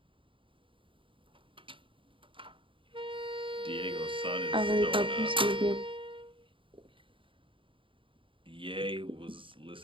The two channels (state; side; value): late; left; 0.25 ms